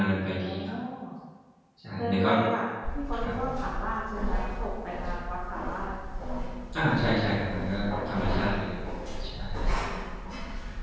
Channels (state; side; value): identical; both; correlation 1.00